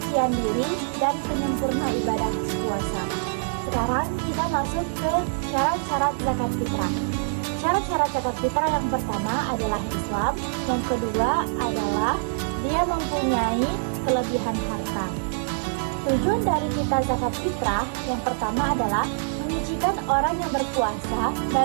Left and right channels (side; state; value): left; silent; digital silence